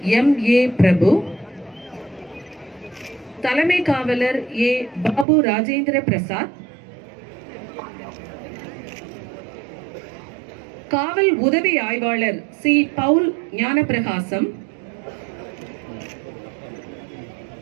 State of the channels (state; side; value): drops out; left; at 5.2 s